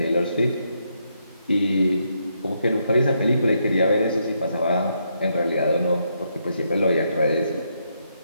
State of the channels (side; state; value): both; inverted; correlation -0.78